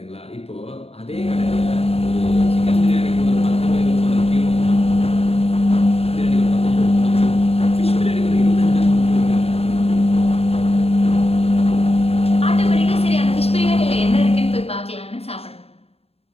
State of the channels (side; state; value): right; late; 0.29 ms